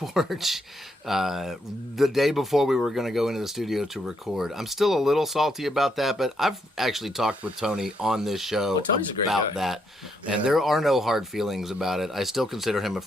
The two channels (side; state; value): both; normal; correlation 0.76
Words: the day before we were going to go into the studio to record. I'm still a little salty about that, but I've actually talked with Tony on this show Tony's a great about guy. that, and Yeah. there are no hard feelings about it. I still consider him a